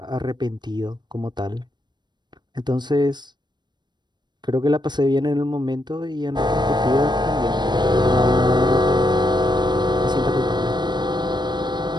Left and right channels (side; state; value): left; late; 0.21 ms